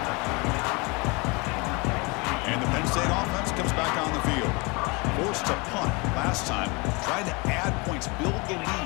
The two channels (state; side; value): quieter; right; 27.9 dB